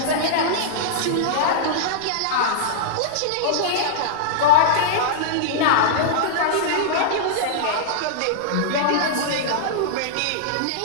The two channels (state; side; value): different; both; correlation -0.02